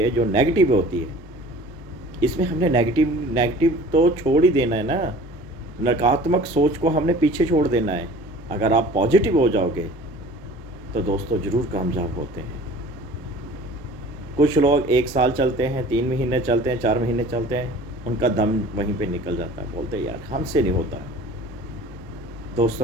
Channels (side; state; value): both; normal; correlation 0.45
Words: जो नेगेटिव होती है। इसमें हमने नेगेटिव तो छोड़ ही देना है ना, नकारात्मक सोच को हमने पीछे छोड़ देना है। अगर आप पॉजिटिव हो जाओगे तो दोस्तों ज़रूर कामयाब होते हैं। कुछ लोग 1 साल चलते हैं, 3 महीने चलते हैं, 4 महीने चलते हैं, उनका दम वहीं पे निकल जाता है, बोलते हैं यार हमसे नहीं होता।